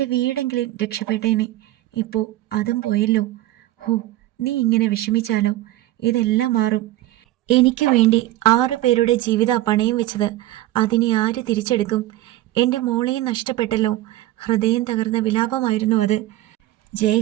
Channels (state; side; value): quieter; left; 15.5 dB